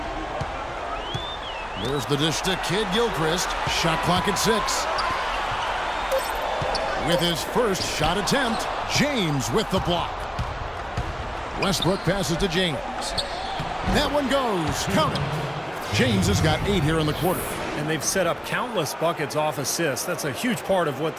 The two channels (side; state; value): both; identical; correlation 1.00